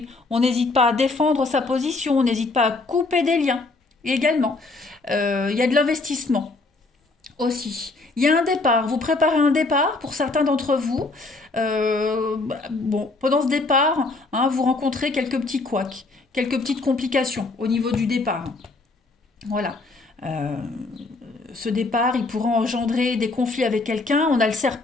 On n'hésite pas à défendre sa position, on n'hésite pas à couper des liens également. Il y a de l'investissement aussi. Il y a un départ, vous préparez un départ pour certains d'entre vous. Bon, pendant ce départ, hein, vous rencontrez quelques petits couacs, quelques petites complications au niveau du départ. Voilà. Euh, Ce départ, il pourra engendrer des conflits avec quelqu'un. On a le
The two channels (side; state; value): right; quieter; 3.4 dB